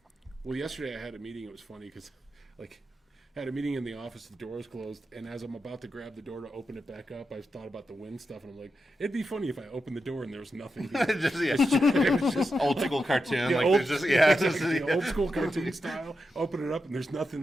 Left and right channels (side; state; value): both; normal; correlation 0.88